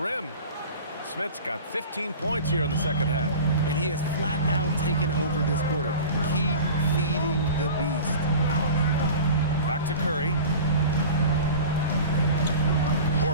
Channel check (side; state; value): both; inverted; correlation -0.37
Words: Smith's got 15 points here in the second half. And he has flat out taken over this quarter. Keep feeding the beast. Back to Curry.